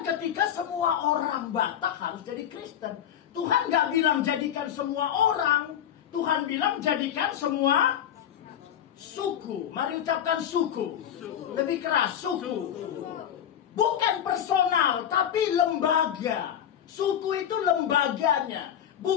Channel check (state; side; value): quieter; right; 9.9 dB